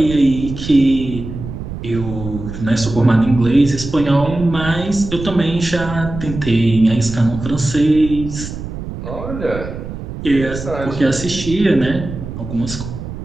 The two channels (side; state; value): right; noise; rumble, 9 dB below the sound